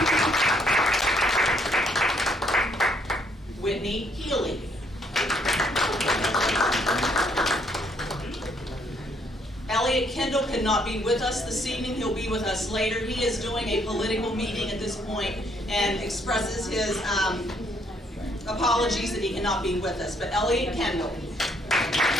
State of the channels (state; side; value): normal; both; correlation 0.69